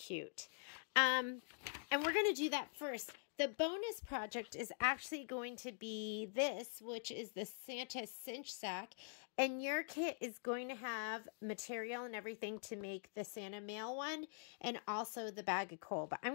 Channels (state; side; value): silent; right; digital silence